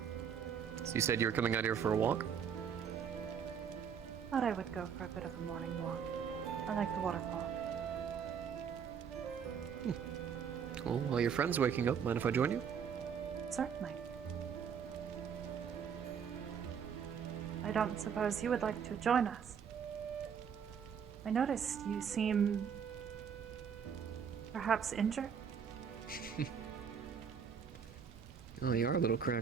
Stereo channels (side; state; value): left; quieter; 7.3 dB